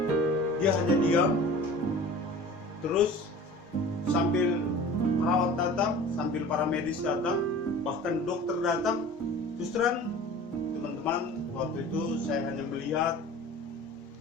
Dia hanya diam, terus sambil perawat datang, sambil para medis datang, bahkan dokter datang. Terus terang teman-teman, waktu itu saya hanya melihat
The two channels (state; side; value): normal; both; correlation 0.41